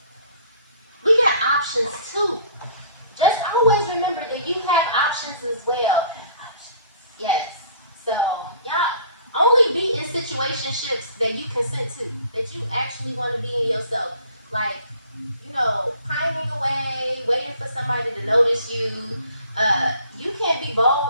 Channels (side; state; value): both; inverted; correlation -0.54